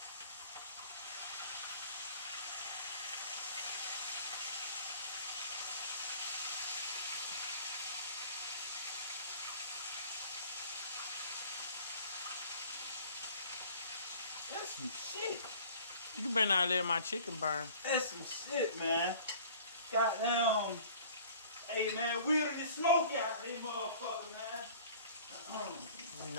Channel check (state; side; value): inverted; both; correlation -0.48